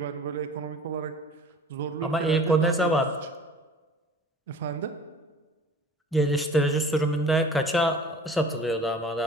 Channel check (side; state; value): both; normal; correlation 0.46